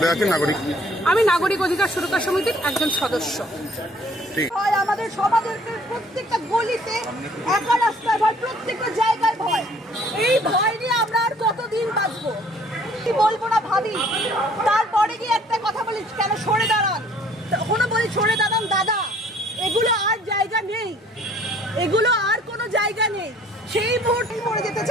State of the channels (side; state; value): both; normal; correlation 0.58